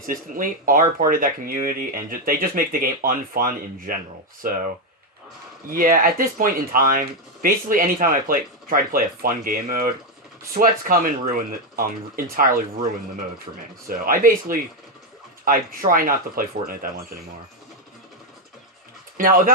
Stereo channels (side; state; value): both; normal; correlation 0.04